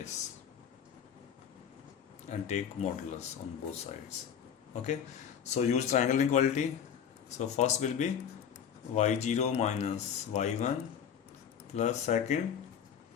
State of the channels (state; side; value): quieter; right; 8.2 dB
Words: and take modulus on both sides. Okay, so use triangle inequality. So first will be y0 minus y1 plus second